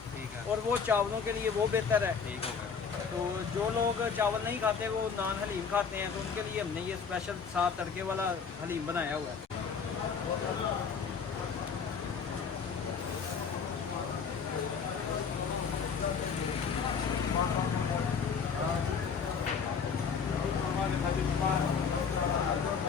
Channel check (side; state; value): right; quieter; 6.1 dB